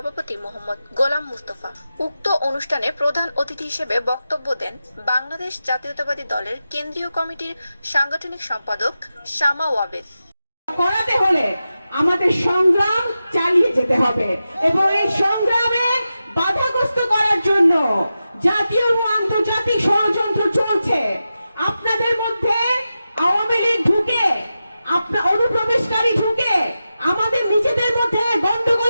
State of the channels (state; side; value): inverted; both; correlation -0.92